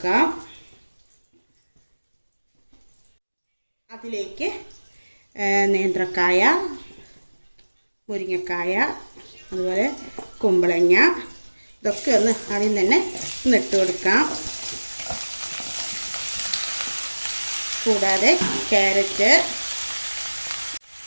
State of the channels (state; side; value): inverted; both; correlation -1.00